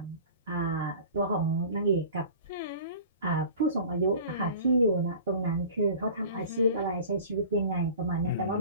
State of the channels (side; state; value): both; inverted; correlation -0.41